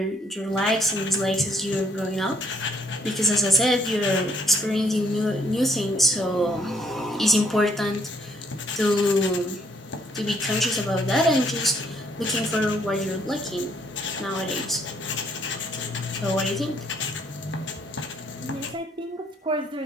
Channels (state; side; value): normal; both; correlation 0.68